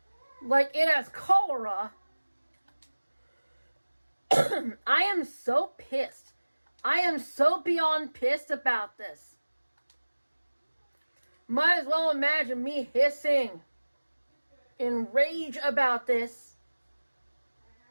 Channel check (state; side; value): inverted; both; correlation -1.00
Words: like it has cholera. I am so pissed. I am so beyond pissed about this. Might as well imagine me hissing in rage about this.